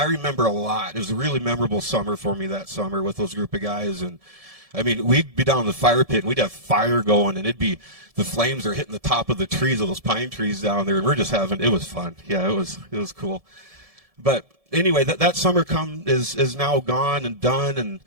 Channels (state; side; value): late; left; 1.7 ms